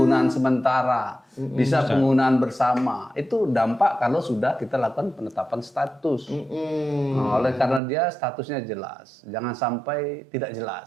sementara, bisa penggunaan bersama. Itu dampak kalau sudah kita lakukan penetapan status. Nah, oleh karena dia statusnya jelas, jangan sampai tidak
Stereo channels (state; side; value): drops out; left; at 7.8 s